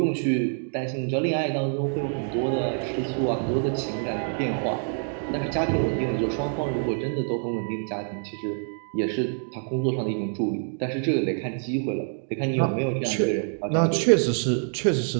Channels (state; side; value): silent; left; 61 dB below the other